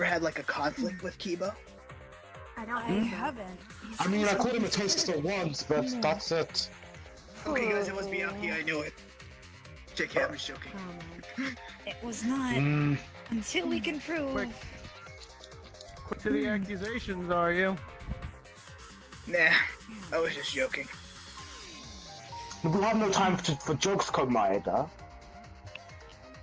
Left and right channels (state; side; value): identical; both; correlation 1.00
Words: had like a conflict with Kibo? I don't I think so. haven't. I mean, I called him a taster once, but that's it. Okay, guys, it was Miyaki. I knew it. JK, I'm just joking. Oh, man. It was not Mm, until we can prove. Quick to the accusations, are you? Nah, I was just joking. we have no time for jokes, Komaeda.